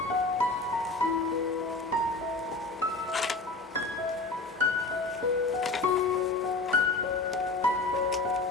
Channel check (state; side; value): quieter; right; 3.3 dB